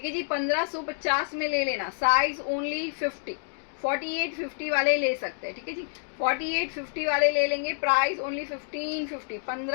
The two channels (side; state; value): right; silent; digital silence